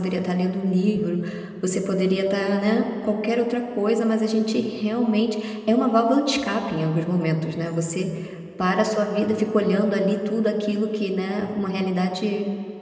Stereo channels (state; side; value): identical; both; correlation 1.00